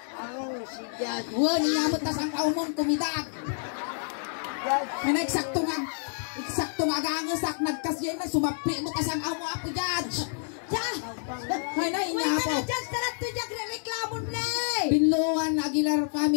Ako si Judge. Wala, niyamot tas ang kaumon kumidag. May eksakto nga agangasak nagkasyan na sumapli mo tas ang amo Apo Judge. Hay na Wait inyapo. na, judge. Tarat to dyan, reklamo na Binluan Aguilar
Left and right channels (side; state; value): right; silent; digital silence